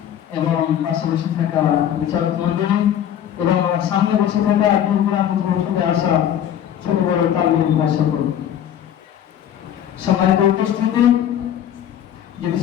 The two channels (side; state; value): right; quieter; 10.1 dB